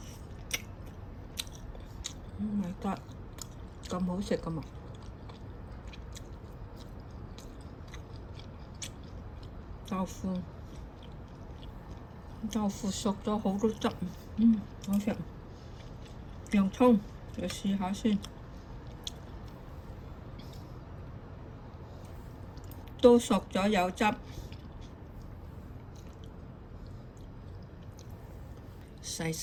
My God，咁好食㗎嘛！豆腐豆腐熟咗好多汁，好食。洋葱就試下先，都熟咗有汁，細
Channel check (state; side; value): identical; both; correlation 1.00